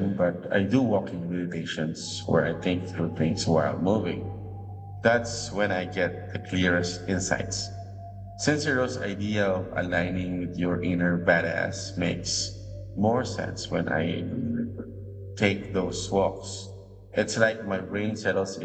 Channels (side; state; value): both; identical; correlation 1.00